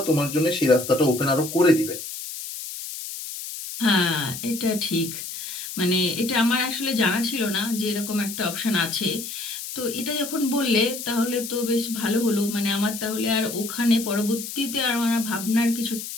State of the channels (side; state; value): left; noise; hiss, 8 dB below the sound